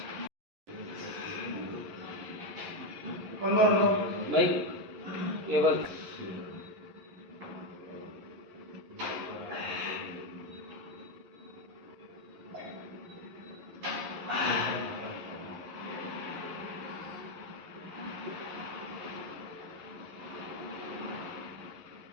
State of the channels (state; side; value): late; left; 11 ms